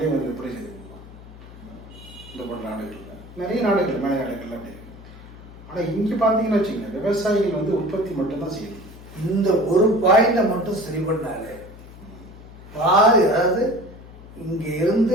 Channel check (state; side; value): noise; left; hum, 18 dB below the sound